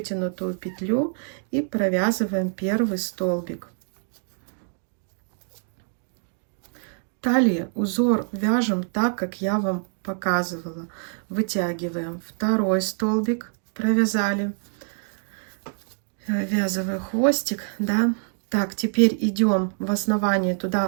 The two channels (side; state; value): left; silent; 57 dB below the other